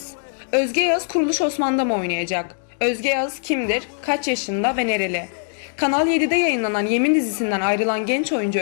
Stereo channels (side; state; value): right; silent; digital silence